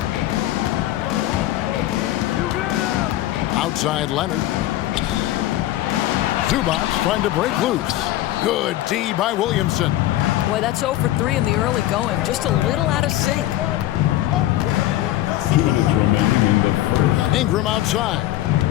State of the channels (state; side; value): quieter; right; 14.7 dB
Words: Outside Leonard. Zubac trying to break loose. Good D by Williamson. Boy, that's 0 for 3 in the early going. Just a little out of sync. 2 minutes remaining in the first. Ingram outside.